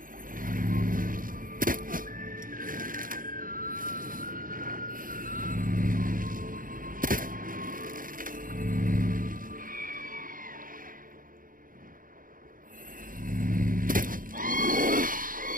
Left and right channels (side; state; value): left; late; 0.40 ms